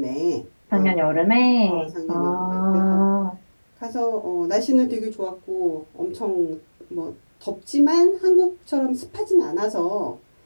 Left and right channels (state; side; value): inverted; both; correlation -1.00